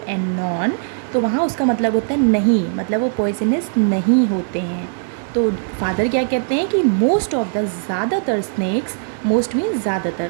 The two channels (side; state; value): left; silent; digital silence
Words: non, तो वहाँ उसका मतलब होता है नहीं, मतलब वो poisonous नहीं होते हैं. तो फादर क्या कहते हैं कि मोस्ट ऑफ द ज़्यादातर स्नैक्स, मोस्ट मीन्स